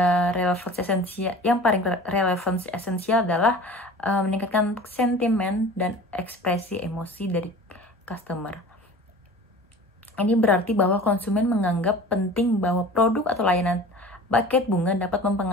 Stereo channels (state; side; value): normal; both; correlation 0.40